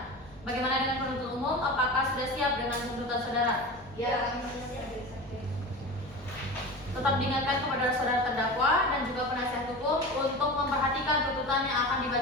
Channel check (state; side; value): noise; left; rumble, 24 dB below the sound